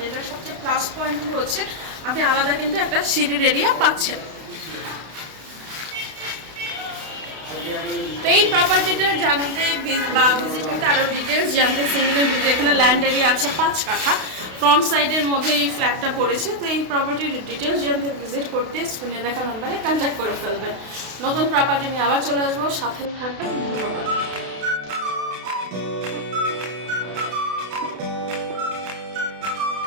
এটা সবচেয়ে প্লাস পয়েন্ট হচ্ছে আপনি আলাদা কিন্তু একটা সিঁড়ির এরিয়া পাচ্ছেন। তো এই প্রপার্টিটা জানতে বা ভিজিট করতে আরও ডিটেলস জানতে সিঙ্গেলের ভিডিও, এখানে ল্যান্ড এরিয়া আছে 5 কাঠা, ফ্রন্ট সাইডের মধ্যে এই ফ্ল্যাটটা পড়েছে। তো এই প্রপার্টির ডিটেলস জানতে ভিজিট করতে স্ক্রিনে দেখা নাম্বারে কন্ট্যাক্ট করে ফেলবেন। নতুন প্রপার্টি নিয়ে আবার চলে আসবো, সাথে থাকবেন। ধন্যবাদ।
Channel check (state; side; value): late; left; 32 ms